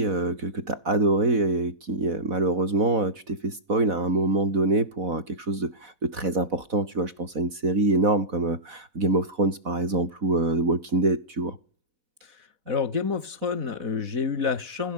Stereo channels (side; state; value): left; late; 4.1 ms